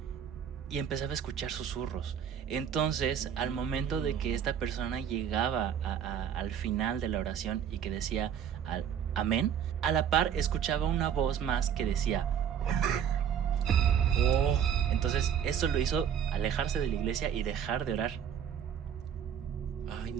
y empezaba a escuchar susurros. Entonces, al momento de que esta persona llegaba al final de la oración y que decía amén, a la par escuchaba una voz más que decía amén. Entonces, eso lo hizo alejarse de la iglesia y dejar de orar. Ay,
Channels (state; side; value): quieter; left; 8.7 dB